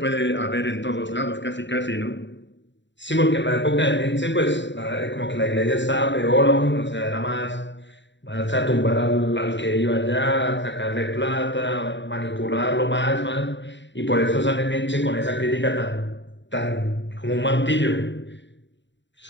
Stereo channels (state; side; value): late; right; 0.53 ms